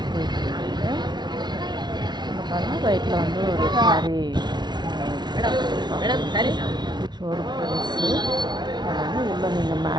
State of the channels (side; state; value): left; late; 0.20 ms